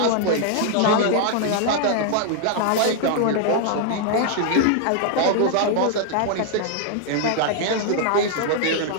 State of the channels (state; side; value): different; both; correlation 0.00